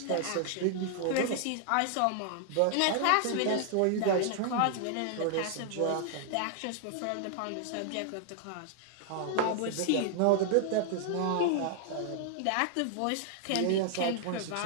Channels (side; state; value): both; different; correlation 0.00